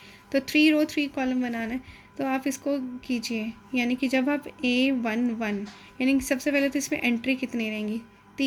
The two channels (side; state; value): both; identical; correlation 1.00